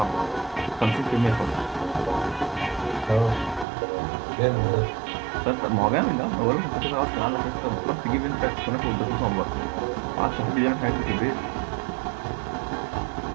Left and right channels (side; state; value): left; drops out; at 3.7 s